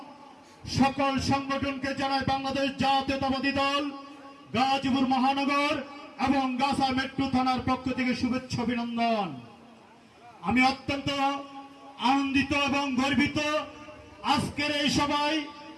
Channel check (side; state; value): both; identical; correlation 1.00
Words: সকল সংগঠনকে জানায় বাংলাদেশ জাতীয়তাবাদী দল গাজীপুর মহানগর এবং গাছা মেট্রো থানার পক্ষ থেকে শুভেচ্ছা অভিনন্দন। আমি অত্যন্ত আনন্দিত এবং গর্বিত আজকের এই সভায়